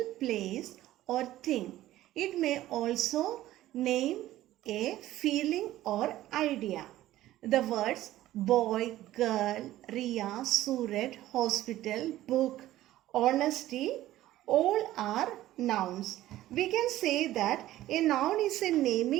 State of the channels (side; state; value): left; quieter; 14.7 dB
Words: place or thing. It may also name a feeling or idea. The words boy, girl, Riya, Suraj, hospital, book, honesty, all are nouns. We can say that a noun is a